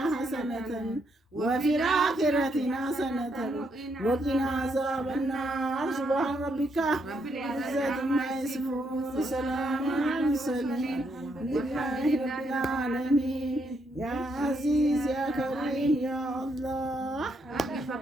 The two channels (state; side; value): normal; both; correlation 0.76